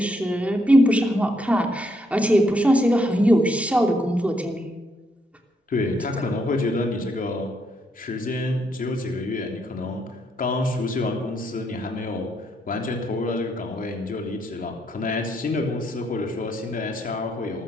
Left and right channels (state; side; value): normal; both; correlation 0.75